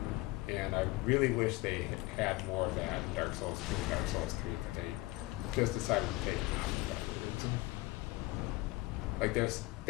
and I really wish they had more of that in Dark Souls 2 and Dark Souls 3, but they just decided to take them out for whatever reason. Like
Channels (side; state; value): right; quieter; 21.0 dB